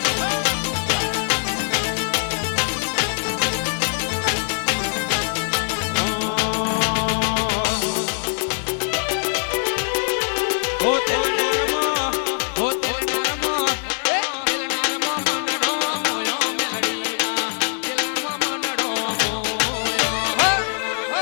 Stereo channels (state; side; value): silent; right; 64 dB below the other